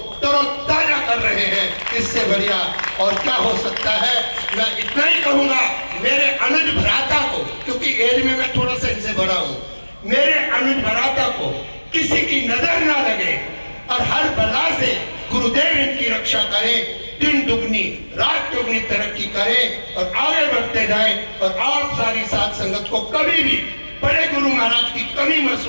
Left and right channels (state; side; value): inverted; both; correlation -1.00